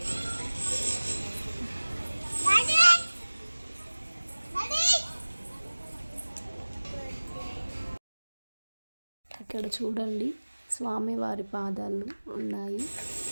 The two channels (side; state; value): both; inverted; correlation -1.00